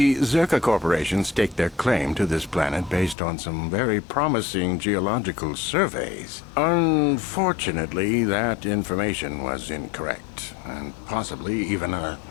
Zerka Corporation staked their claim to this planet based on some very promising geological surveys. Unfortunately, that information was incorrect, and possibly even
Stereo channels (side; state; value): right; drops out; at 3.2 s